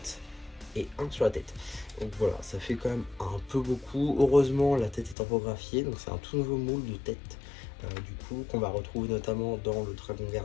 et un sur la tête. Donc voilà, ça fait quand même un peu beaucoup. Heureusement la tête est tempographiée, donc c'est un tout nouveau moule de tête du coup qu'on va retrouver notamment dans le Dragon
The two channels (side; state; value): right; drops out; at 5.2 s